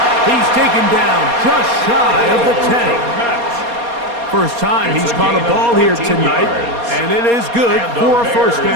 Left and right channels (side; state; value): left; late; 4.2 ms